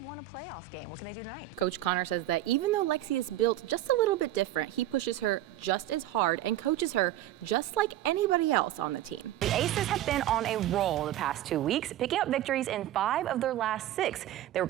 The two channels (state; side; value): quieter; left; 13.4 dB